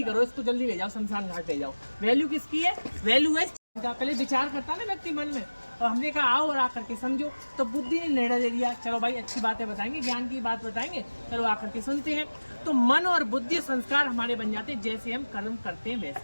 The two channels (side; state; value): both; inverted; correlation -1.00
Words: करो इसको, जल्दी ले जाओ, शमशान घाट ले जाओ। वैल्यू किसकी है, वैल्यू है पहले विचार करता ना व्यक्ति मन में, और हमने कहा आओ और आकर के समझो, तो बुद्धि ने निर्णय ले लिया, चलो भाई अच्छी बातें बताएंगे, ज्ञान की बात बताएंगे, चलो आकर के सुनते हैं। तो मन और बुद्धि संस्कार हमारे बन जाते हैं, जैसे हम कर्म करते हैं